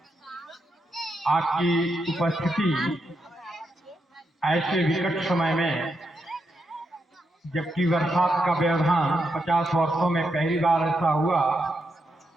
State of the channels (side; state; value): both; normal; correlation 0.83